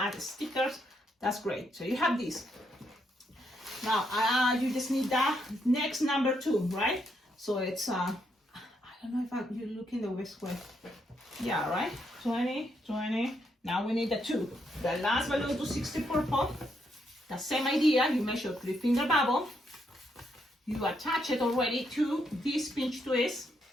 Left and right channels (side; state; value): both; normal; correlation 0.77